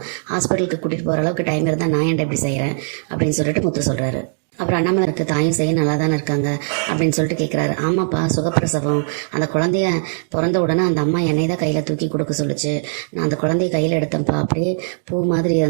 ஹாஸ்பிட்டலுக்கு கூட்டிட்டு போற அளவுக்கு டைம் இருந்தா நான் ஏன்டா இப்படி செய்யறேன் அப்படின்னு சொல்லிட்டு முத்து சொல்றாரு. அப்புறம் அண்ணாமலை இருக்கு தாயும் செய்ய நல்லா தானே இருக்காங்க அப்படின்னு சொல்லிட்டு கேட்குறாரு. ஆமாப்பா, சுகப்பிரசவம். அந்த குழந்தைய பிறந்த உடனே அந்த அம்மா என்னை தான் கையில் தூக்கி கொடுக்க சொல்லிச்சு. நான் அந்த குழந்தைய கையில் எடுத்தேன்ப்பா, அப்படியே பூ மாதிரி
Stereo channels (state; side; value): silent; left; digital silence